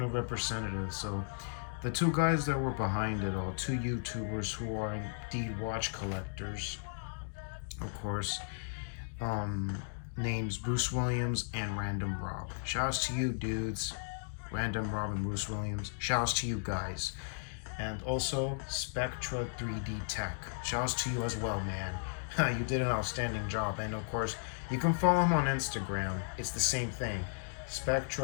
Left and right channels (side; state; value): right; silent; digital silence